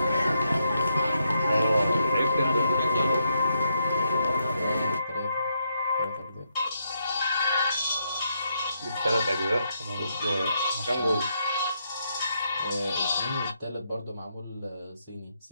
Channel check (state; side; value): inverted; both; correlation -0.79